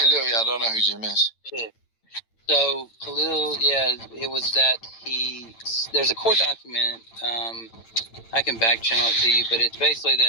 I don't know who Jim is. So Khalil, it was that there's a court document, I can back channel it to you, but it's basically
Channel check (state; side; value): late; right; 8.9 ms